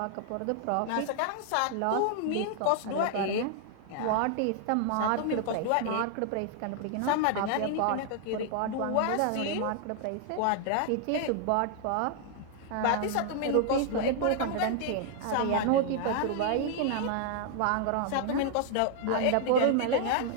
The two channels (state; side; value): different; both; correlation 0.00